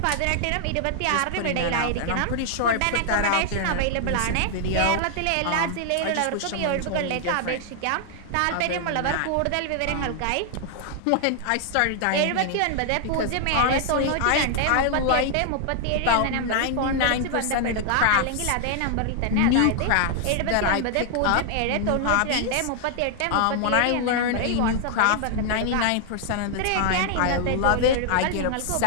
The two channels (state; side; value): different; both; correlation 0.00